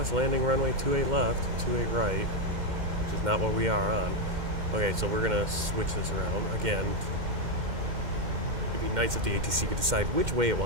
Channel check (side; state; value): left; late; 2.1 ms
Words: landing runway 28 left, 28 right, which is not what we are on. Okay, so we're gonna switch this around again. It'd be nice if the ATC could decide which way it